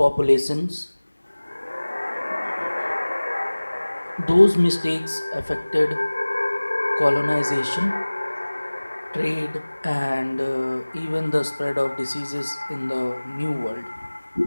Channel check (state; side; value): inverted; both; correlation -1.00